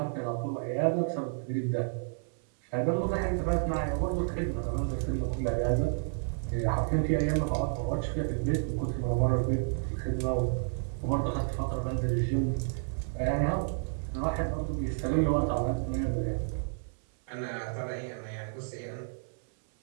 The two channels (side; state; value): left; silent; 57 dB below the other